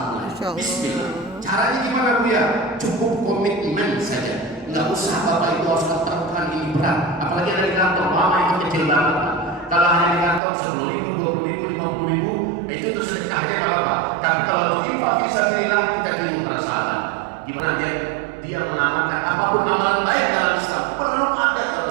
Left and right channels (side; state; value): left; drops out; at 10.4 s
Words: mulai. Bismillah. Caranya gimana Bu ya? Cukup komitmen saja. Nggak usah Bapak Ibu harus katakan ini berat. Apalagi ada di kantor, lama itu kecil banget. Kalau hanya di kantor 10.000, 20.000, 50.000, itu tuh sedekahnya nggak apa-apa. Tapi kalau untuk infak bisa bilang kita kirim pada sahabat. Gimana dia mengamalkan apapun amalan baik dalam Islam perlu ada ya